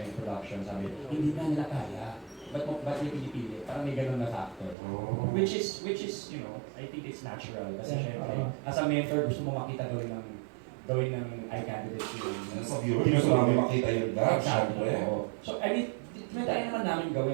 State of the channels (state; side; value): drops out; left; at 4.8 s